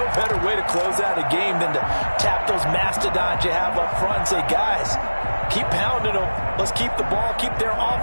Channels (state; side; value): inverted; both; correlation -1.00